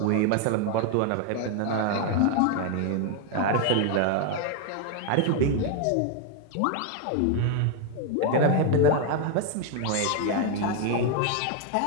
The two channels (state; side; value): different; both; correlation 0.01